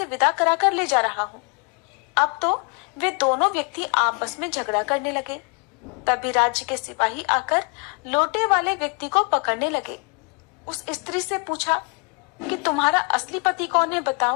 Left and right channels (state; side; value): quieter; right; 34.8 dB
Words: विदा करा कर ले जा रहा हूँ। अब तो वे दोनों व्यक्ति आपस में झगड़ा करने लगे। तभी राज्य के सिपाही आकर लोटे वाले व्यक्ति को पकड़ने लगे। उस स्त्री से पूछा कि तुम्हारा असली पति कौन है,